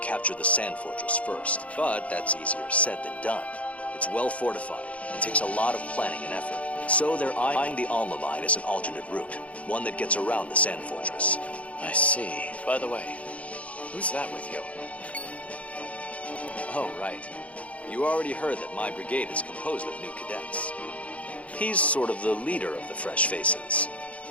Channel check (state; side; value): late; right; 0.066 ms